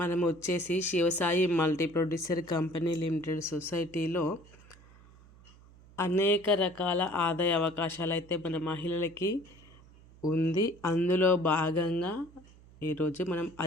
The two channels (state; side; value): noise; right; hum, 24 dB below the sound